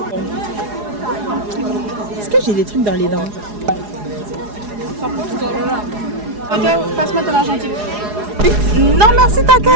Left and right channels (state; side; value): late; left; 4.8 ms